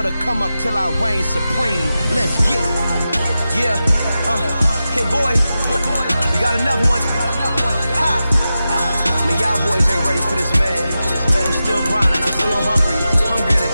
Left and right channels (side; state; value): both; inverted; correlation -0.92